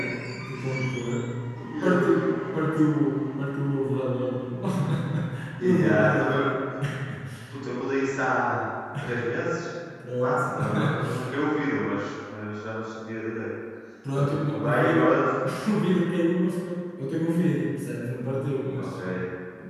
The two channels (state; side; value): identical; both; correlation 1.00